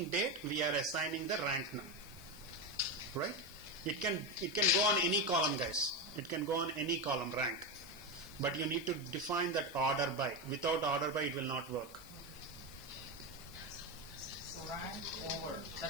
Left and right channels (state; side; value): noise; left; hiss, 19 dB below the sound